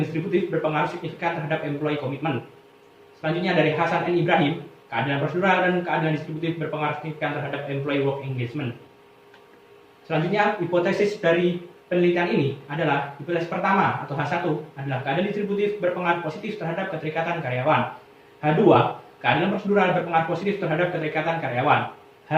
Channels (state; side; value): identical; both; correlation 1.00